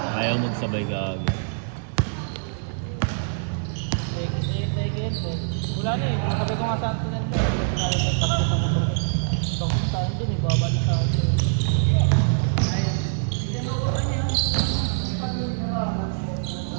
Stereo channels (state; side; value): silent; left; 62 dB below the other